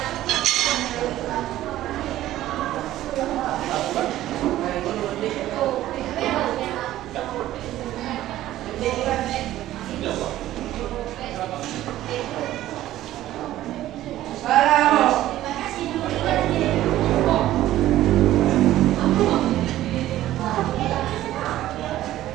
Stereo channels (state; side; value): quieter; left; 14.2 dB